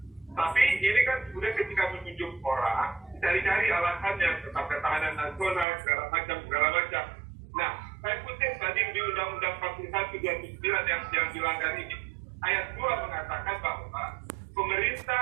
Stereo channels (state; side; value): drops out; left; at 5.7 s